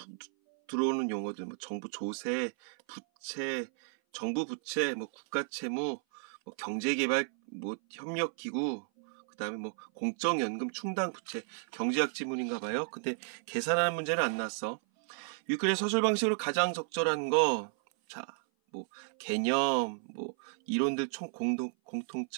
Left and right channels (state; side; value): silent; left; 56 dB below the other